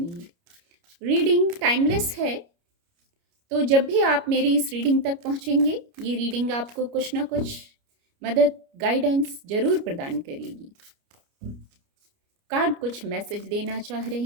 रीडिंग टाइमलेस है, तो जब भी आप मेरी इस रीडिंग तक पहुंचेंगे, ये रीडिंग आपको कुछ ना कुछ मदद, गाइडेंस जरूर प्रदान करेगी। कार्ड कुछ मैसेज देना चाह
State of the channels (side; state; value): left; late; 29 ms